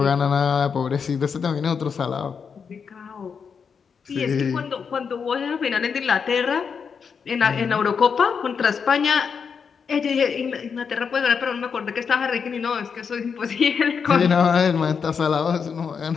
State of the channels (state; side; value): quieter; right; 6.2 dB